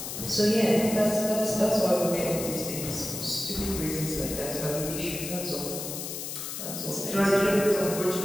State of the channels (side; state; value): left; noise; hiss, 6 dB below the sound